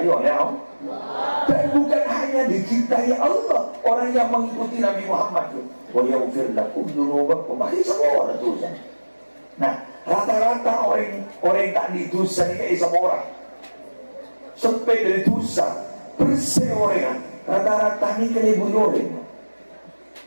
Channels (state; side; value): inverted; both; correlation -1.00